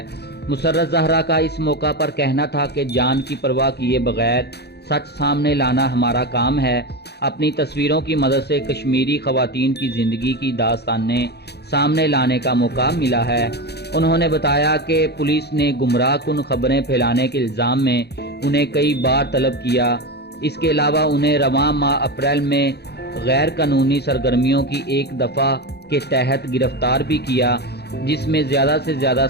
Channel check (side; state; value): right; late; 0.48 ms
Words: مسرت زہرا کا اس موقع پر کہنا تھا کہ جان کی پرواہ کیے بغیر سچ سامنے لانا ہمارا کام ہے۔ اپنی تصویروں کی مدد سے کشمیری خواتین کی زندگی کی داستانیں سامنے لانے کا موقع ملا ہے۔ انہوں نے بتایا کہ پولیس نے گمراہ کن خبریں پھیلانے کے الزام میں انہیں کئی بار طلب کیا۔ اس کے علاوہ انہیں رواں ماہ اپریل میں غیر قانونی سرگرمیوں کی ایک دفعہ کے تحت گرفتار بھی کیا، جس میں زیادہ سے زیادہ